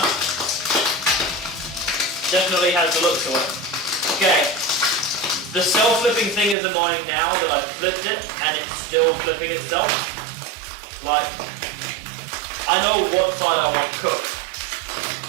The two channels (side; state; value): left; drops out; at 6.6 s